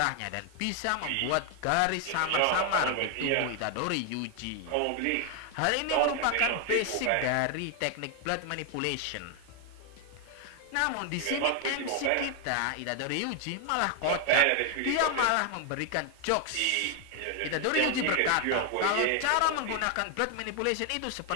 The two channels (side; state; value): both; different; correlation 0.00